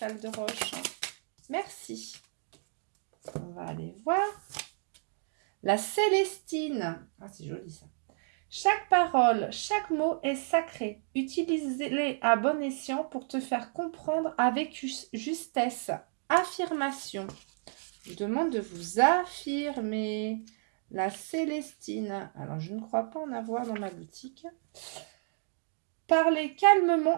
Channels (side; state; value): left; silent; 57 dB below the other